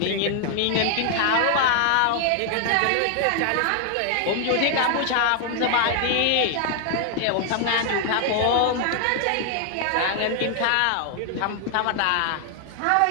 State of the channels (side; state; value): both; different; correlation 0.00